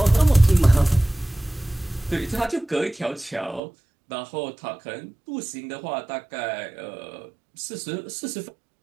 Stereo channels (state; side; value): drops out; left; at 3.6 s